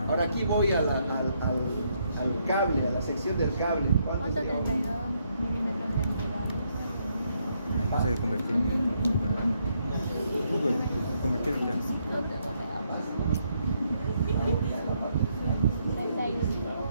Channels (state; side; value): inverted; both; correlation -0.75